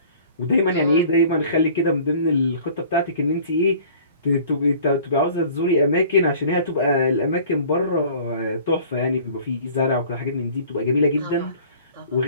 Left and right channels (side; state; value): both; inverted; correlation -0.49